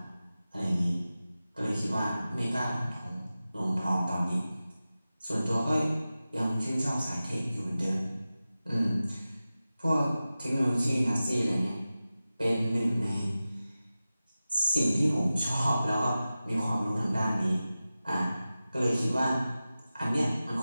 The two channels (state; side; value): inverted; both; correlation -0.95